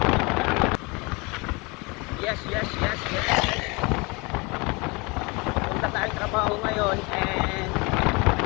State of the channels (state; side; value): quieter; right; 27.4 dB